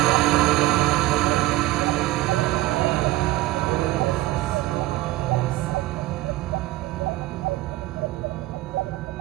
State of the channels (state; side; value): quieter; left; 17.7 dB